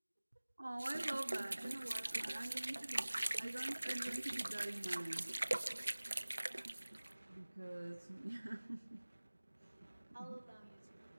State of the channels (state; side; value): inverted; both; correlation -1.00